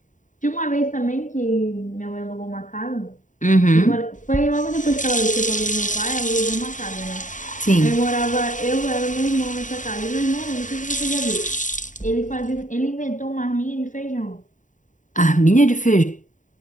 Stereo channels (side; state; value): right; late; 0.37 ms